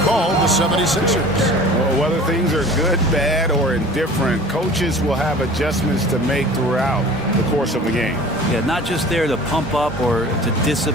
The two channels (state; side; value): normal; both; correlation 0.43